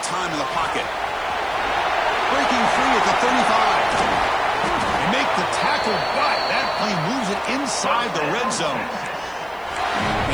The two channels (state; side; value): noise; left; hiss, 30 dB below the sound